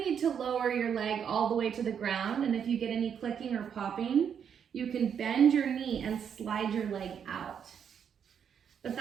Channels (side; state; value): left; quieter; 7.8 dB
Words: to lower your leg all the way to the ground, and if you get any clicking or popping, you can bend your knee and slide your leg out. But